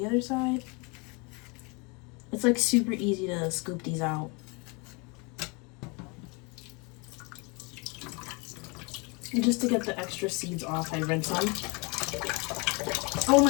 other side. It's like super easy to scoop these out. And just to get the extra seeds off, I rinse them. Oh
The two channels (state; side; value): quieter; right; 30.3 dB